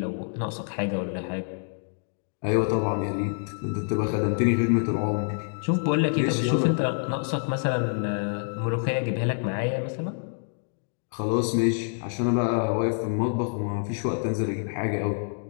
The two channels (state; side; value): silent; right; 60 dB below the other